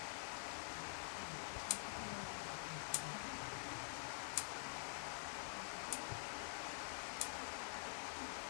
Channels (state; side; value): silent; right; digital silence